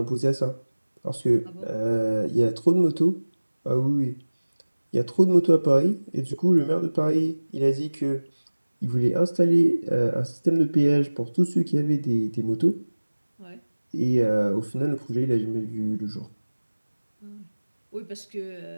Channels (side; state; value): both; inverted; correlation -1.00